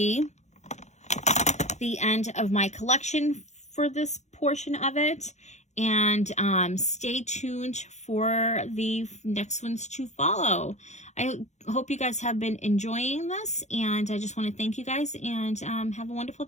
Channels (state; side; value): late; right; 0.33 ms